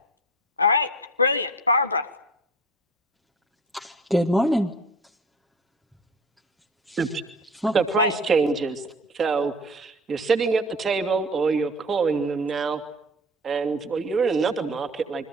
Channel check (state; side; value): normal; both; correlation 0.40